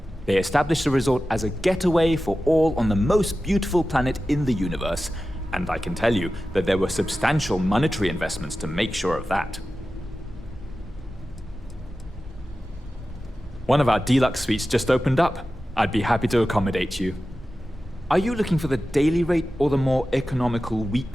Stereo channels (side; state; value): both; normal; correlation 0.94